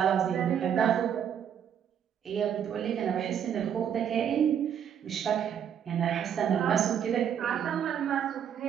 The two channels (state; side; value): quieter; left; 8.8 dB